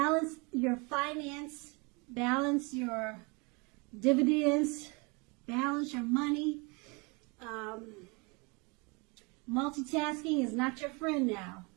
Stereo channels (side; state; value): left; quieter; 29.7 dB